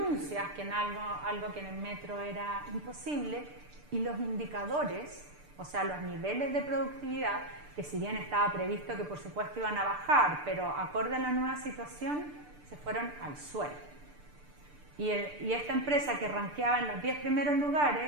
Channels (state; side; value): late; left; 6.8 ms